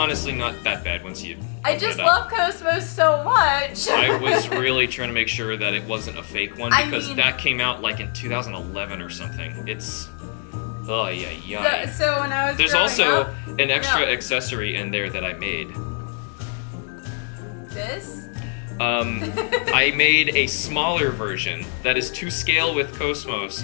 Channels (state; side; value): quieter; right; 39.5 dB